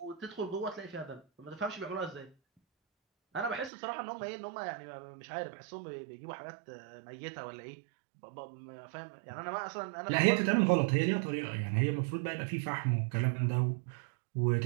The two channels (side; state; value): left; drops out; at 3.7 s